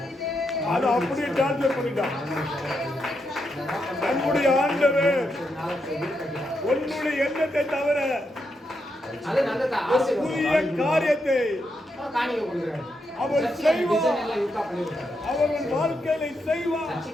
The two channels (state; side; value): normal; both; correlation 0.82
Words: அது அப்படியே டார்ச்சர் பண்ணிட்டான். நம்முடைய ஆண்டவர் உன்னுடைய எண்ணத்தை தவிர புதிய காரியத்தை அவர் செய்வார். அவர்கள் வாழ்க்கையை செய்வார்.